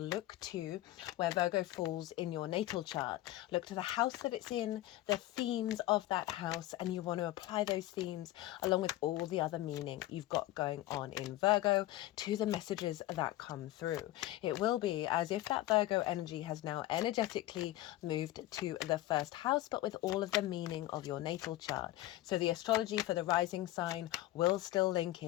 to where Virgo falls in your natal chart. Look to the house that it's in, the themes of that house, and you want to apply those themes along with all the other meaning you've got going on in Virgo to the messages that come through. It will be as if that Virgo energy has now energetically moved to the first house, but with all of the meaning of your natal chart. So the astrology for the rising sign will still link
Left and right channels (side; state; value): right; quieter; 15.8 dB